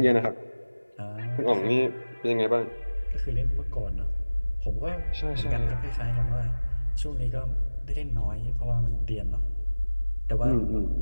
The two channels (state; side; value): inverted; both; correlation -1.00